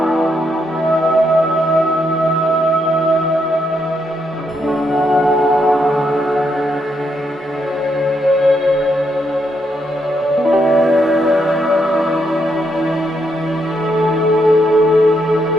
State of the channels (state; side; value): normal; both; correlation 0.78